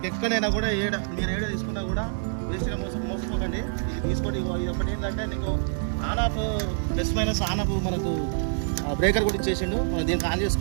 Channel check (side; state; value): left; silent; digital silence